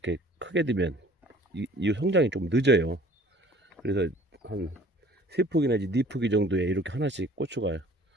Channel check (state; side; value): normal; both; correlation 0.51